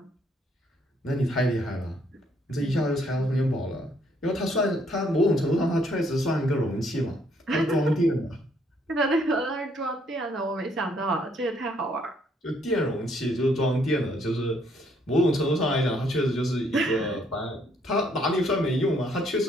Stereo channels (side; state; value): both; normal; correlation 0.68